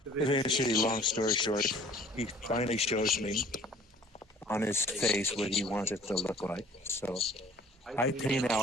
eventually, long story short, he finally shows me on his face what he wants it to look like. So I paint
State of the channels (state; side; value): normal; both; correlation 0.51